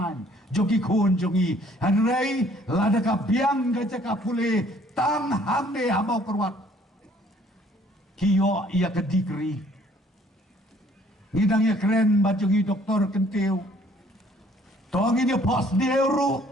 Jogi kun jongi. Hanray lada ka biang gaja ka puli. Tang hamde hamau kerwat. Kiyo ia ke degree. Ngidang ia keren bajungi doktor kentiu. Tong ini pos deuru.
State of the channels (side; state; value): both; normal; correlation 0.60